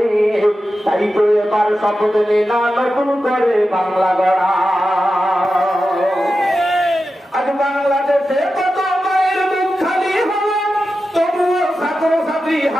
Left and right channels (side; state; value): both; normal; correlation 0.91